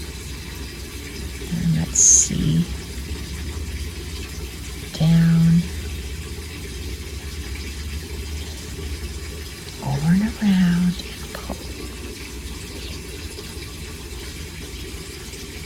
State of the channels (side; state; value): both; identical; correlation 1.00